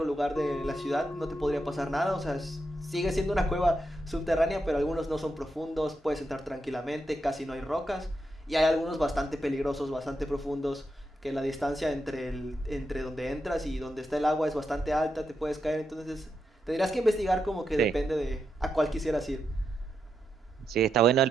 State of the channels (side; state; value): both; normal; correlation 0.84